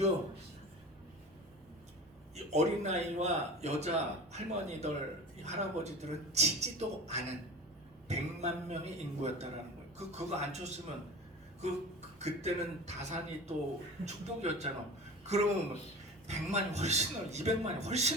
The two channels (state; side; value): normal; both; correlation 0.34